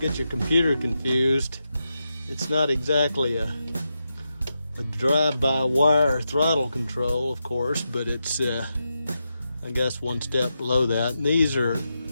your computer confused. It's not exactly a drive-by-wire throttle control, of course, but it's I guess one step below that. And these are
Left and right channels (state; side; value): inverted; both; correlation -0.87